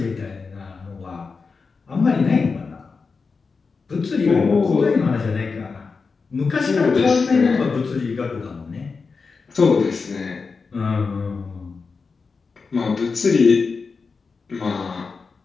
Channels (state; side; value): quieter; right; 4.7 dB